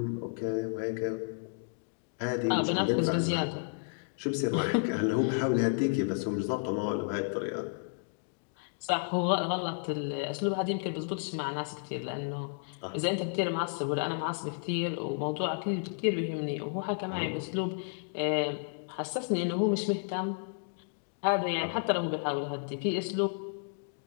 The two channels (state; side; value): silent; right; digital silence